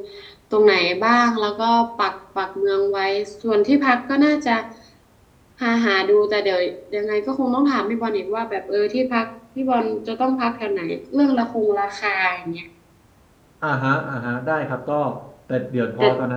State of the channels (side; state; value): both; identical; correlation 1.00